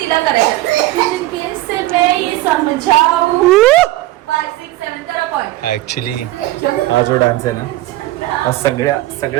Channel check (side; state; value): left; quieter; 16.8 dB